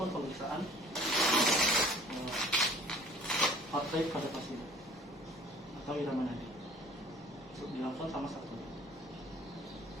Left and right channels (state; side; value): normal; both; correlation 0.52